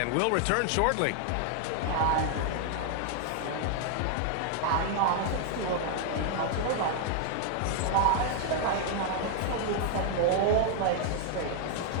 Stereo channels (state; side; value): different; both; correlation 0.00